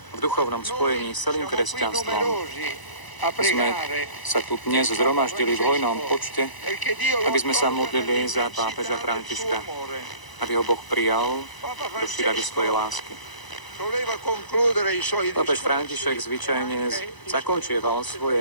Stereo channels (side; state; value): right; late; 1.0 ms